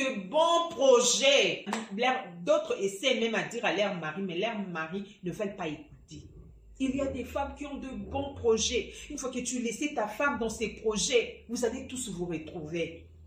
bons projets. D'autres essaient même à dire à leur mari, mais leurs maris ne veulent pas écouter. Il y a des femmes qui ont de bons projets. Une fois que tu laisses ta femme dans ses projets, vous allez tous vous retrouver.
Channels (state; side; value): identical; both; correlation 1.00